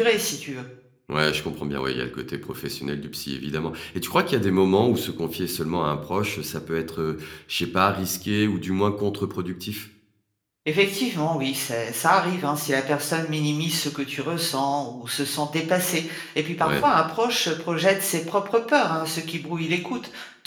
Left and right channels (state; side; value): identical; both; correlation 1.00